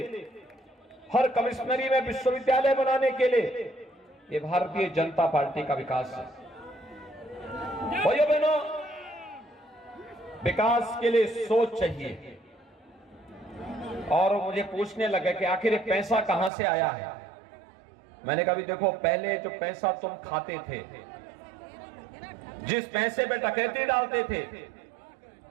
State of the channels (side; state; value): left; drops out; at 16.5 s